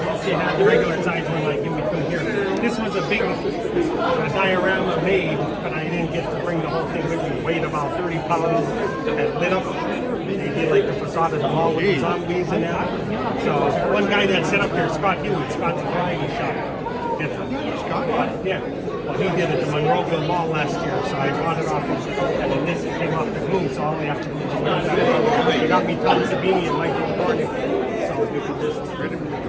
you had the regular size one like in between here. This was a big diorama made, but I didn't get to bring the whole thing with me. It weighed about 30 pounds and lit up. They did like the facade of the mall with the zombies and that. So one guy that set up here, Scott Hughes, Scott's variety shop. Scott? Yeah. Well, he did it at the Monroeville Mall last year, so I bought it off him. And then this came off the boom, so all we have to do is just that. They got me Tom Savini and Michael Cornick. So we could just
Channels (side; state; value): both; identical; correlation 1.00